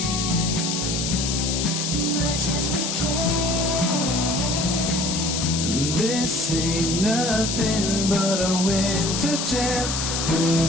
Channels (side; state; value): left; noise; hiss, 2 dB below the sound